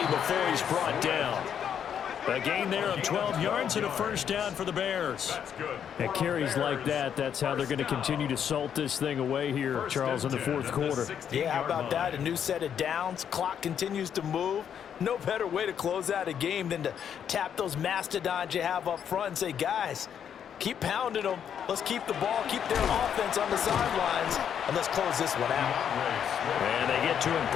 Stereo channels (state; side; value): quieter; right; 8.5 dB